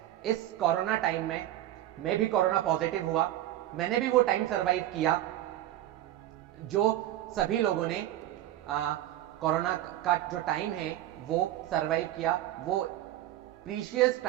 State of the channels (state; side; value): quieter; left; 13.7 dB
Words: इस कोरोना टाइम में मैं भी कोरोना पॉजिटिव हुआ। मैंने भी वो टाइम सरवाइव किया जो सभी लोगों ने कोरोना का जो टाइम है वो सरवाइव किया। वो प्रीशियस